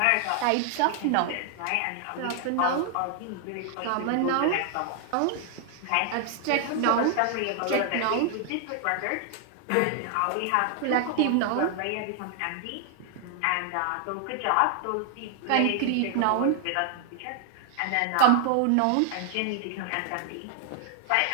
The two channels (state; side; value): different; both; correlation 0.00